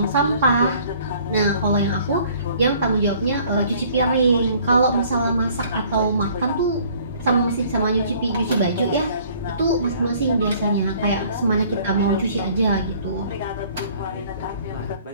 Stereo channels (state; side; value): inverted; both; correlation -0.56